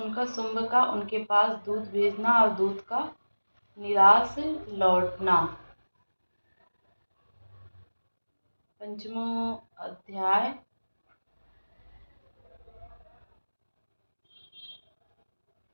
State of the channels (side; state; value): both; inverted; correlation -1.00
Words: शुंभ का उनके पास दूत भेजना और दूत का निराश लौटना। पंचमो अध्याय।